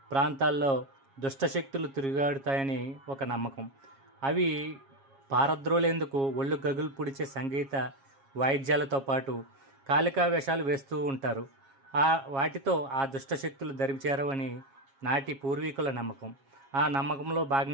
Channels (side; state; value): left; late; 7.3 ms